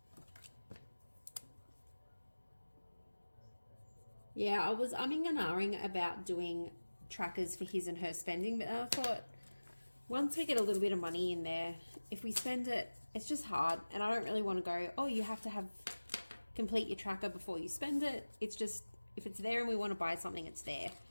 Yeah, I was umming and ahhing about doing trackers for his and her spending, but I thought once we get a little bit of money in there, if we spend it, it's just hard, and I don't really want to go, oh, you have to complete your tracker before you spend it. It's just, if it's there and we want to buy something, it's there.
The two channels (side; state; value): both; inverted; correlation -1.00